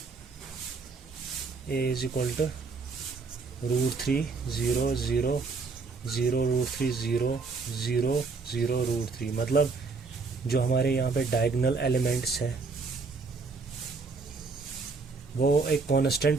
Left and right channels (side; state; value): left; quieter; 4.3 dB